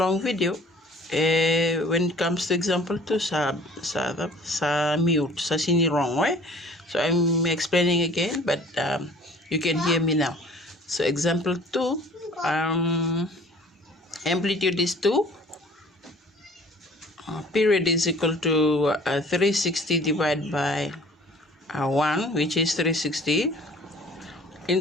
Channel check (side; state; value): both; normal; correlation 0.50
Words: video, when it comes to example 2, sa mute, sa sini wrong, right? So I'm explaining again, but you can hear me now. So example 2, amplitude is 2. Period is equal to 360 divided by 1, which is 360.